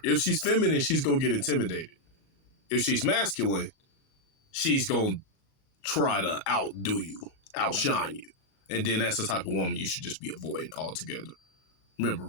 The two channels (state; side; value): late; right; 38 ms